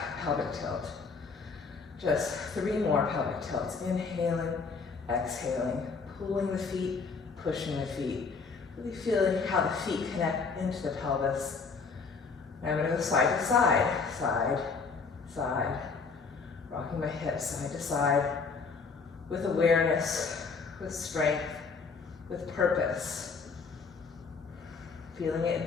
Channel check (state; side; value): quieter; right; 4.9 dB